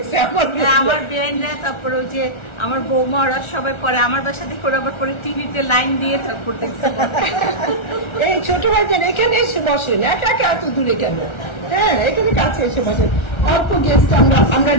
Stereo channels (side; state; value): right; late; 1.3 ms